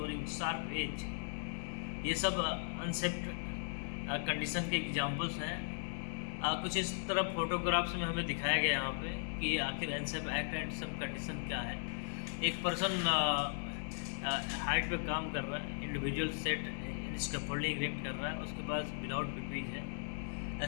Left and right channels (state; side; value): silent; right; digital silence